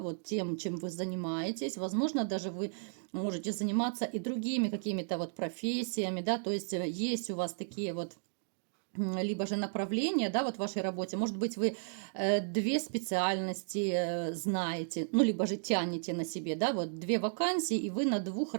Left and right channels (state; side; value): silent; left; digital silence